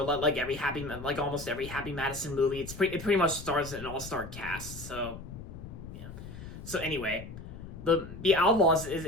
almost every Happy Madison movie. It pretty much stars an all-star cast. So anyway, the Outlaws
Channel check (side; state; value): left; noise; rumble, 12 dB below the sound